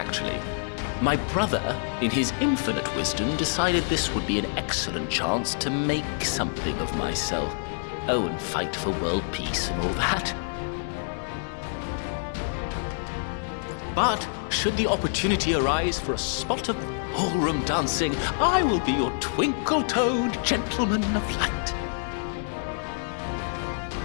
My brother, in his infinite wisdom, decided this would be an excellent chance to make something of myself. Oh, and fight for world peace and all that. But, should the opportunity arise for a spot of ballroom dancing, I will be your twinkle-toed gentleman of light.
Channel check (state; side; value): silent; right; digital silence